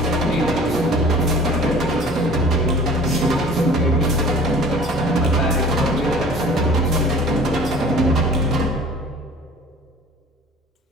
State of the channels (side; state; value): both; normal; correlation 0.46